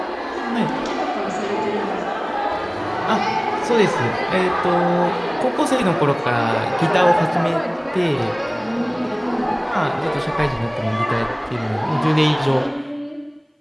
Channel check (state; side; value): identical; both; correlation 1.00